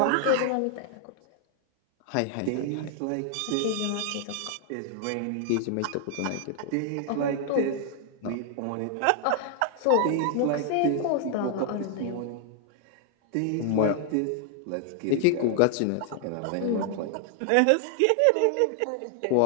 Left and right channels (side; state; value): both; different; correlation 0.00